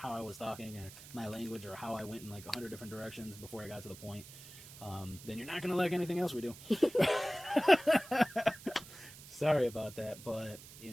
I was talking, or my language, or how I went in like 100 different directions before I got to the point, then you're not going to like anything else we do. Sorry about that, but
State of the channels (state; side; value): noise; right; hiss, 16 dB below the sound